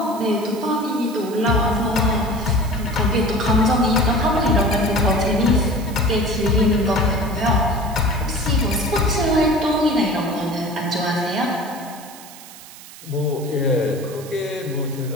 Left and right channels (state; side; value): noise; right; hiss, 18 dB below the sound